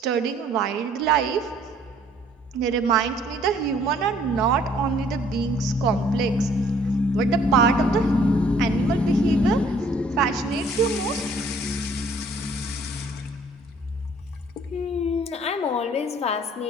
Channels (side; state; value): both; normal; correlation 0.59